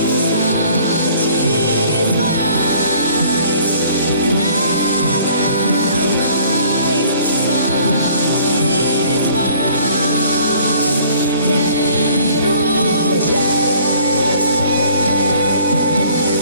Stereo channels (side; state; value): both; inverted; correlation -0.55